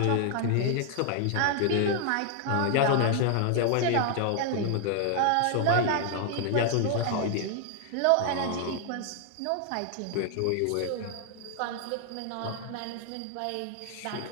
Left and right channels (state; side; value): different; both; correlation 0.00